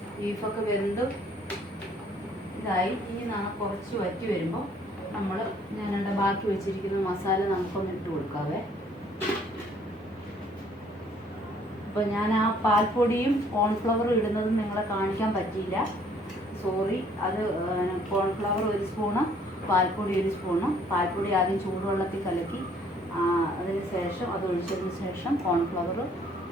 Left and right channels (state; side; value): normal; both; correlation 0.61